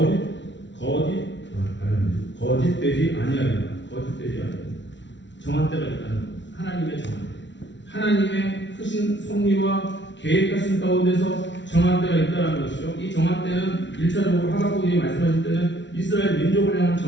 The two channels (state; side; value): late; right; 0.52 ms